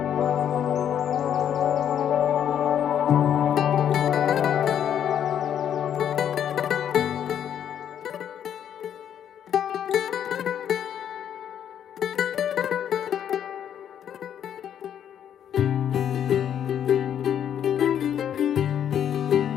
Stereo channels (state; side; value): quieter; right; 9.4 dB